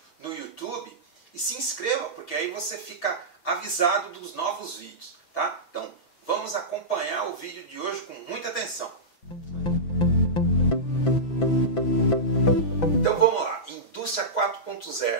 no YouTube, e se inscreva, porque aí você fica avisado dos novos vídeos, tá? Então, vamos acompanhar o vídeo de hoje com muita atenção. Então vamos lá, Indústria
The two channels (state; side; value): late; right; 6.0 ms